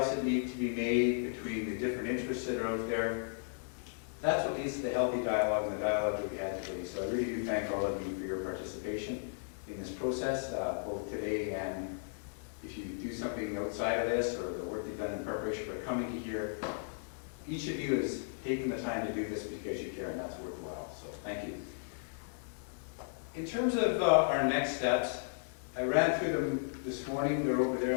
that need to be made, between the different interests that are out there, that's what leads to the healthy dialogue and the dialogue that we had today. So I really do thank all of you for your participation in this process, both today and if you do something outside of this or the work you've done in preparation for coming here. Each of you has taken the time to do this because you care, and that's worthwhile. So thank you. In terms of our next steps, I ran through them this morning. They're over there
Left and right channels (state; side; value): silent; right; digital silence